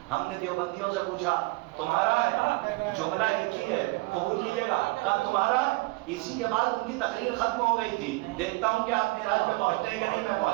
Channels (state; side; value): quieter; left; 23.2 dB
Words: ہم نے دیوبندیوں سے پوچھا تمہارا ہے؟ جملہ ایک ہی ہے، قبول کیجیے گا. کہا تمہارا ہے. اسی کے بعد ان کی تقریر ختم ہو گئی تھی. دیکھتا ہوں کہ آپ معراج پہ پہنچتے ہیں کہ نہیں، میں